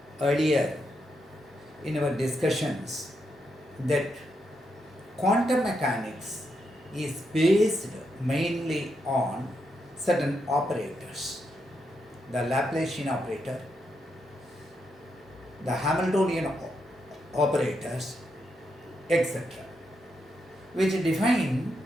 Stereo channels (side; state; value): both; normal; correlation 0.82